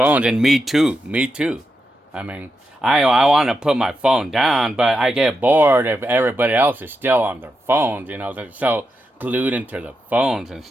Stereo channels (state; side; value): normal; both; correlation 0.86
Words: and me too. Me too. I mean, I want to put my phone down, but I get bored if everybody else is still on their phones. They're so glued into the phones and